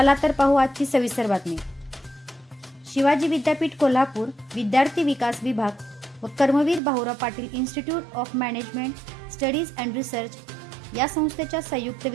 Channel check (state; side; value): drops out; left; at 6.8 s